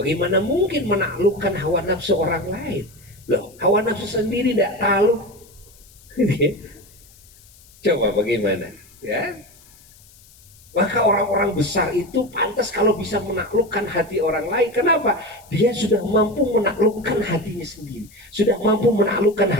mungkin menaklukkan hawa nafsu orang lain? Loh, hawa nafsu sendiri tidak takluk. Coba bagaimana? Ya. Maka orang-orang besar itu pantas kalau bisa menaklukkan hati orang lain. Kenapa? Dia sudah mampu menaklukkan hatinya sendiri, sudah mampu menaklukkan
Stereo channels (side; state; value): left; noise; hiss, 26 dB below the sound